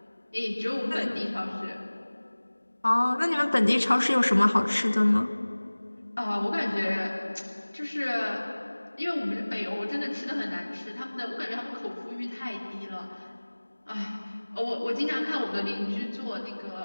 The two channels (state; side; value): inverted; both; correlation -1.00